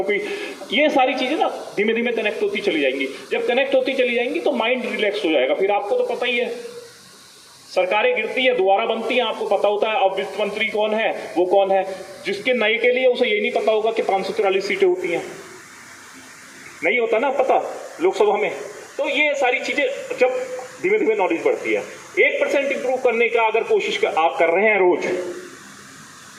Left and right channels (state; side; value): identical; both; correlation 1.00